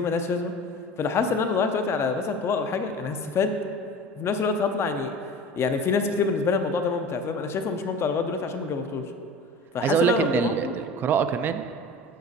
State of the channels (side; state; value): both; normal; correlation 0.37